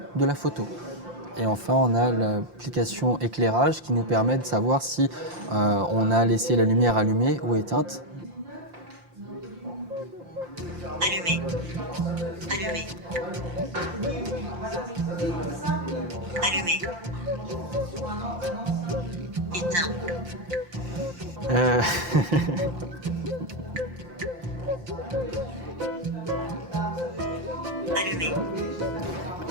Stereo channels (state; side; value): late; left; 5.7 ms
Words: de la photo. Et enfin, on a l'application éclairage qui nous permet de savoir si on a laissé la lumière allumée ou éteinte. Allumé. Allumé. Allumé. Éteint. Allumé.